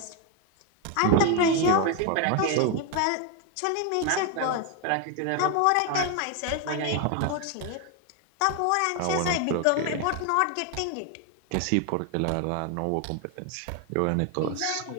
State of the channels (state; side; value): different; both; correlation 0.01